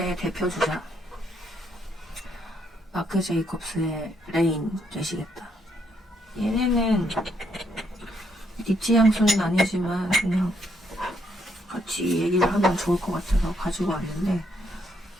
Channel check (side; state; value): both; normal; correlation 0.74